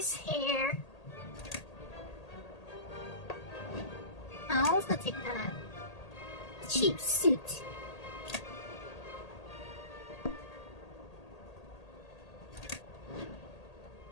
hair. I'll also take that. Cheap suit.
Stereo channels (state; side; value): late; right; 1.8 ms